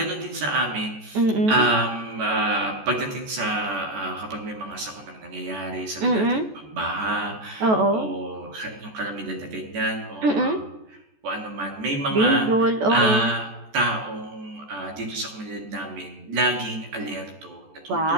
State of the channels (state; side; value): late; left; 14 ms